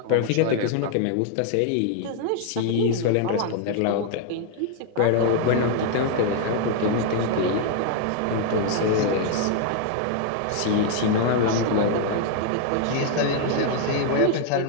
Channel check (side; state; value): both; different; correlation 0.00